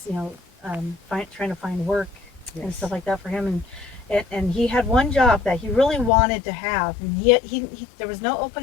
trying to find work and stuff like that for him. And he had one job that he really wanted to have, and he there was no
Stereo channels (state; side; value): drops out; right; at 6.1 s